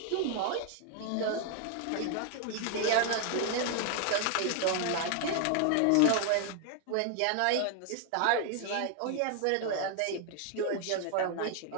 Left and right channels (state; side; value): different; both; correlation 0.00